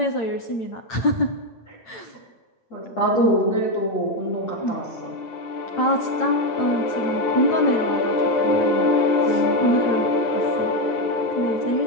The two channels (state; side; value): late; right; 8.9 ms